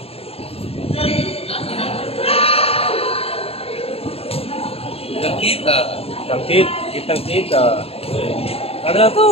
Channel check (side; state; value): right; late; 0.28 ms